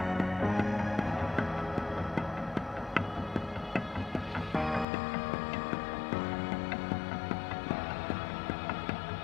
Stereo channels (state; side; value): drops out; right; at 4.9 s